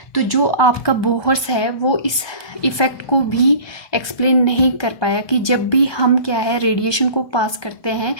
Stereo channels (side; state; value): right; late; 1.2 ms